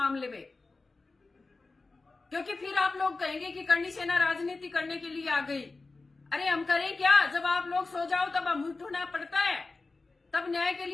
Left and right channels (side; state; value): right; quieter; 3.6 dB